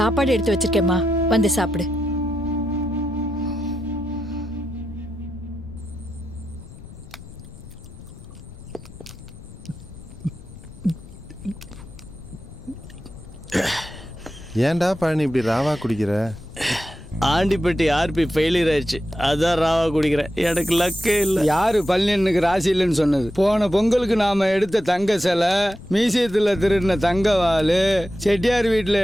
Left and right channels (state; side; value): noise; left; rumble, 17 dB below the sound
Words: எடுத்து வச்சிருக்கேம்மா, வந்து சாப்பிடு. ஏன்டா பழனி இப்படி ராவா குடிக்கிற? ஆண்டிப்பட்டி ஆர்பி ஃபெயிலியர் ஆயிடுச்சு, அதான் ராவா குடிக்கிறேன். எனக்கு லக்கே இல்லை. யாரு பழனியனுக்கு ராசி இல்லைன்னு சொன்னது? போன பொங்கலுக்கு நாம எடுத்த தங்க சிலை, மியூசியத்தில் திருடின தங்க வாளு, செட்டியார் வீட்டில்